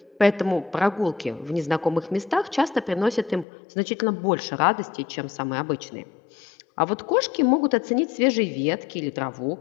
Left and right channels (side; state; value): right; drops out; at 3.5 s